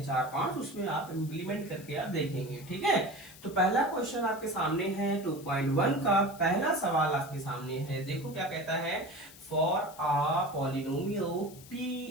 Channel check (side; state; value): left; noise; hiss, 19 dB below the sound